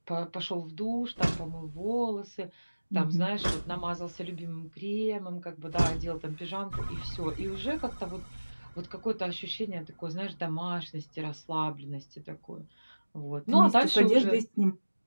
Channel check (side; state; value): both; inverted; correlation -1.00